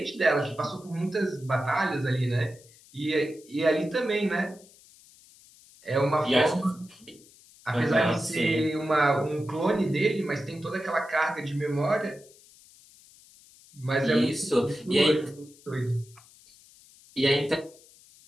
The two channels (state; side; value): noise; left; hiss, 25 dB below the sound